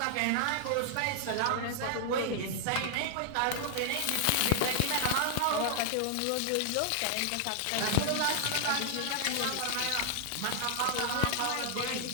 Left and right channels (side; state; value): both; different; correlation -0.01